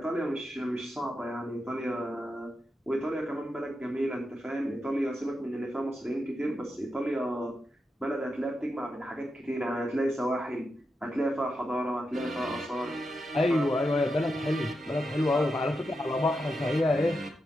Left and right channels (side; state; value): both; normal; correlation 0.87